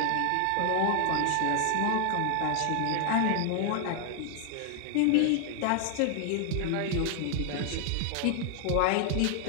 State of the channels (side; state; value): both; different; correlation 0.00